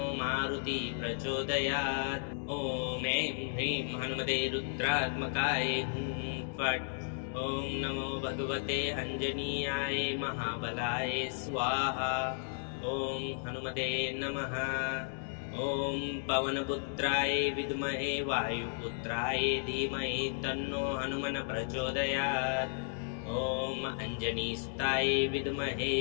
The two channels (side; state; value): right; silent; digital silence